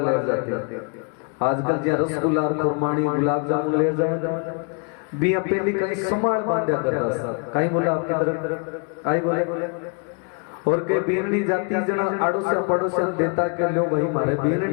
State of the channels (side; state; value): right; quieter; 37.2 dB